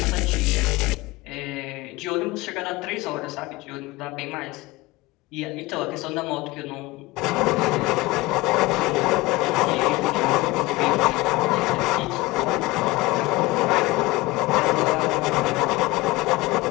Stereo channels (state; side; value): quieter; right; 20.9 dB